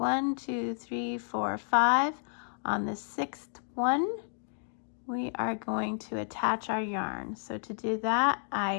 2, 3, 4, 5. On the 6th one, we are going to attach our yarn. So to do that,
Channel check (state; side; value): silent; right; 57 dB below the other